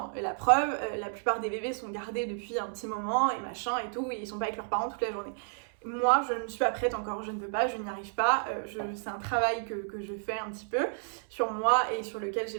Et la preuve, la plupart des bébés sont gardés depuis un petit moment et machin et tout, et ils sont pas avec leurs parents toute la journée. Moi, je ne suis pas prête encore, je ne peux pas, je n'y arrive pas. C'est un travail que je fais un petit peu sur moi et sur lequel j'ai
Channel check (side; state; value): left; silent; 57 dB below the other